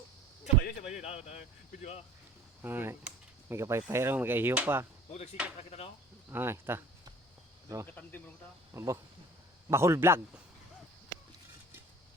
Sabay yun. Pwede ba? Ay, may kapay-pay raw, may kahiyo pa. Huwag nagsikat na kita no? Ay, ta. Bro, Katandim mo ta. abo. Bahol vlog.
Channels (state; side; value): normal; both; correlation 0.49